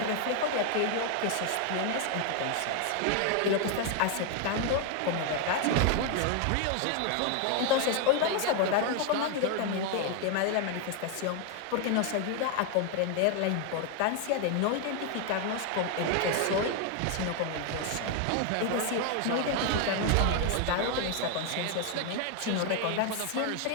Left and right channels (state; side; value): different; both; correlation 0.01